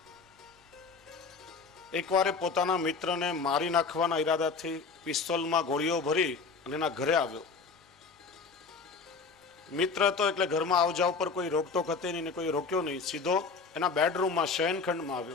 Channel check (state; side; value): quieter; right; 4.7 dB